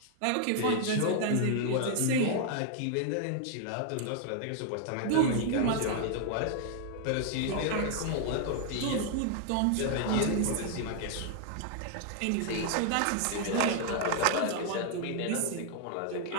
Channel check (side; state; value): both; different; correlation 0.00